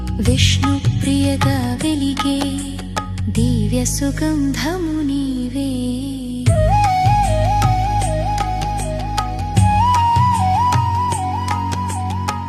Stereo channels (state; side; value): identical; both; correlation 1.00